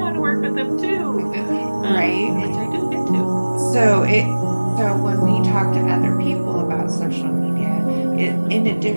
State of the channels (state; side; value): inverted; both; correlation -1.00